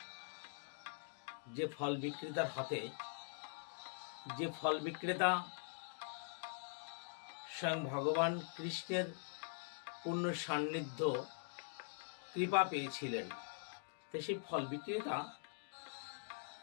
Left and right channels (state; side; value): silent; right; digital silence